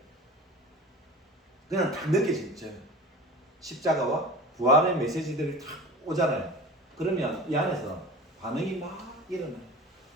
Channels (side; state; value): both; normal; correlation 0.36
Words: 그냥 딱 느껴지죠. 십자가와 부활의 메시지들이 딱 오잖아요. 그러면 이 안에서 반응이 막 일어나요.